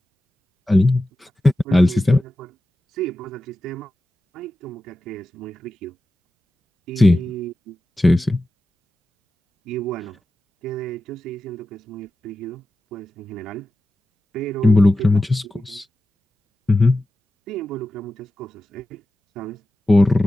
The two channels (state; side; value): normal; both; correlation 0.92